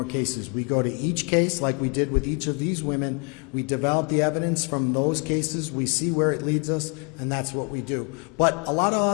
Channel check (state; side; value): quieter; right; 35.7 dB